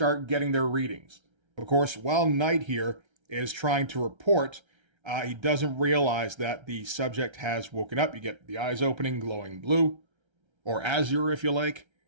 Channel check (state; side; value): late; left; 1.3 ms